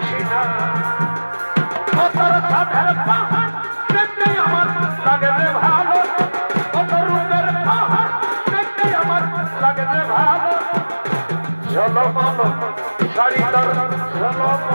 না তোর সাধের পাহাড় দেখতে আমার লাগে রে ভালো কত রূপের পাহাড় দেখতে আমার লাগে রে ভালো ঝলমল শাড়ি তোর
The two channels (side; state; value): both; inverted; correlation -1.00